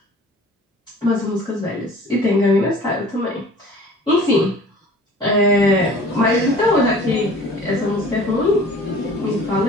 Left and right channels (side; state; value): both; normal; correlation 0.46